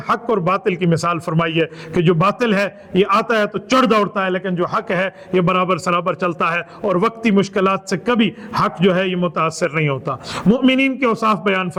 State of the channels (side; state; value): both; identical; correlation 1.00